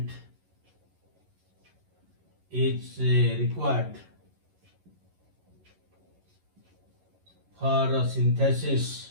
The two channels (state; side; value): late; left; 11 ms